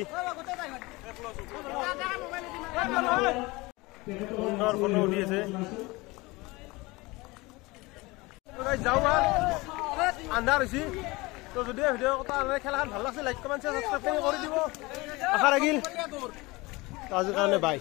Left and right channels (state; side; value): quieter; right; 22.9 dB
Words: সুন্দৰ ফটো উঠি আছে যাওঁ আন্ধাৰ হৈছে তো যদি ভিডিঅ' খেলাখন ভাল লাগিছে লাইক কমেণ্ট শ্বেয়াৰ সাবস্ক্ৰাইব কৰি দিব আশা ৰাখিল আজিৰ কাৰণে বাই